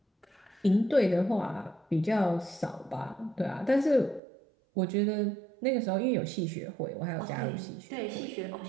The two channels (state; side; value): drops out; left; at 4.2 s